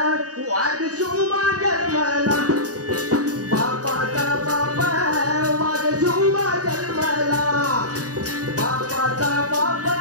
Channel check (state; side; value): late; left; 0.67 ms